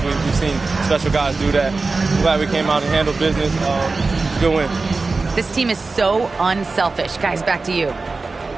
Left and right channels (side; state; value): left; quieter; 3.8 dB